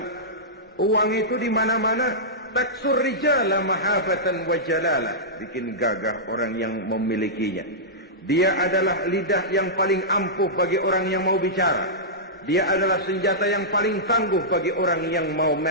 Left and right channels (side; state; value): both; normal; correlation -0.13